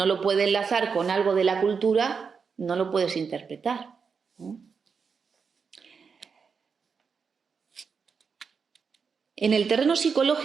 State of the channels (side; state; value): left; quieter; 5.7 dB